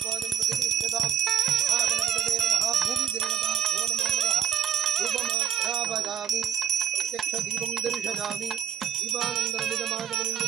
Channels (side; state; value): left; quieter; 9.5 dB